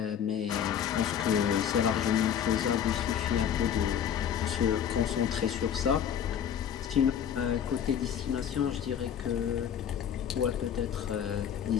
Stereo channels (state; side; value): quieter; right; 8.8 dB